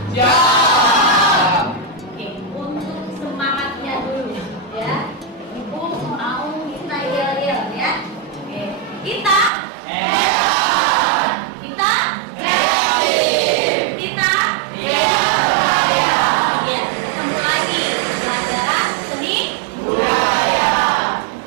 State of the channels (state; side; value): drops out; left; at 9.5 s